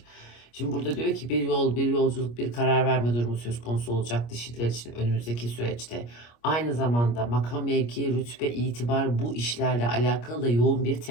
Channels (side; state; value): right; late; 25 ms